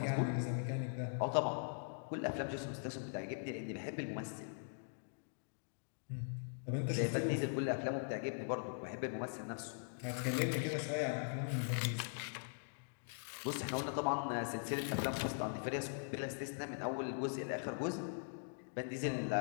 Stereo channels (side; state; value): right; silent; digital silence